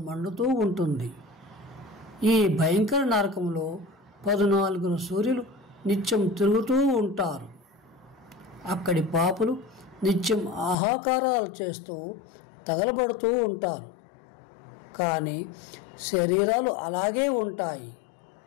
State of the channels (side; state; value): right; drops out; at 10.8 s